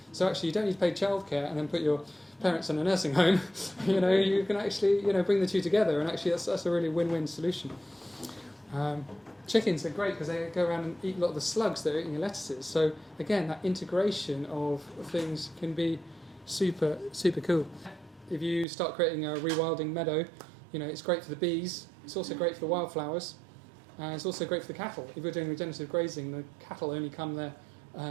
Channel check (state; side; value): drops out; left; at 18.7 s